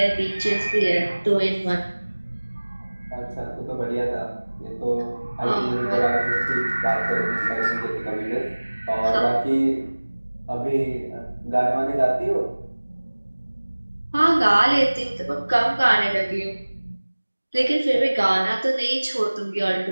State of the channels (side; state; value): both; inverted; correlation -1.00